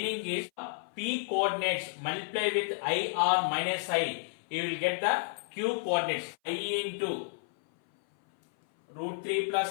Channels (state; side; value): silent; right; 56 dB below the other